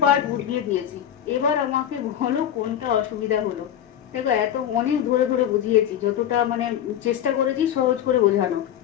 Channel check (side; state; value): right; quieter; 10.5 dB